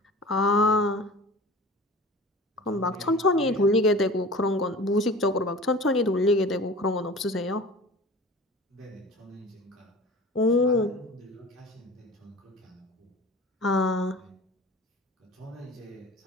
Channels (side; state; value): both; normal; correlation 0.39